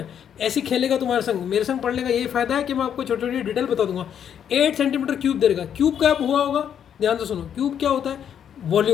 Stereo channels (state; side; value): quieter; right; 8.8 dB